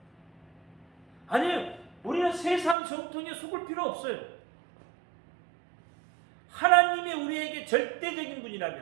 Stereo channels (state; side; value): drops out; left; at 2.8 s